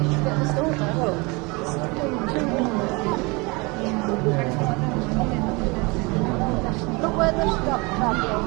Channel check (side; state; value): left; quieter; 27.1 dB